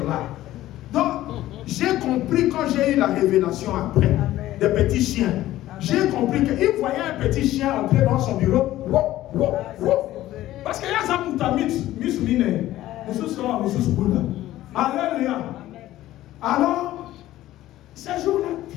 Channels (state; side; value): quieter; right; 14.8 dB